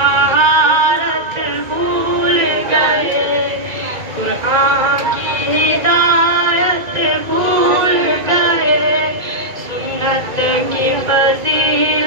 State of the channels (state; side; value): late; left; 2.3 ms